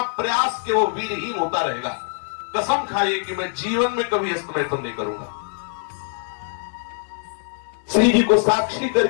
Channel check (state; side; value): silent; right; digital silence